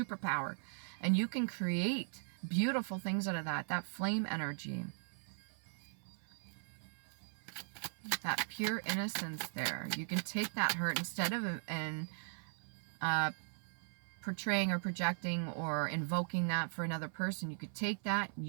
And you can create beautiful things out of that flame energy, that pure innocence there. You can take that hurt instead of portraying or projecting or invoking that for another person. You could take that,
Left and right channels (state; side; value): silent; left; 52 dB below the other